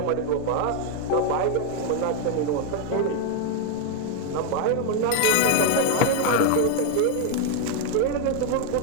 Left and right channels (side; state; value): both; different; correlation 0.01